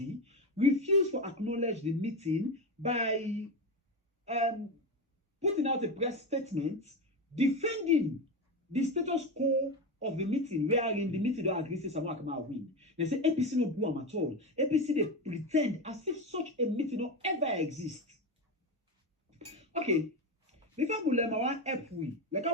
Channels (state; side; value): normal; both; correlation 0.18